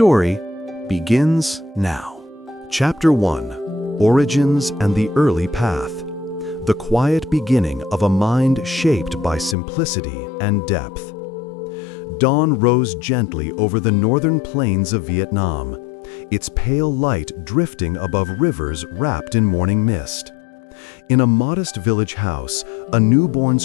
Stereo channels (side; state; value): right; drops out; at 9.6 s